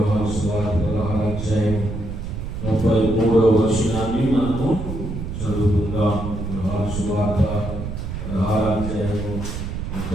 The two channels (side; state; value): right; noise; rumble, 6 dB below the sound